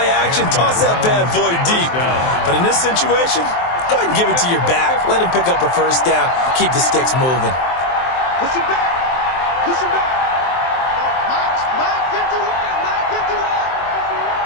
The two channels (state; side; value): late; right; 23 ms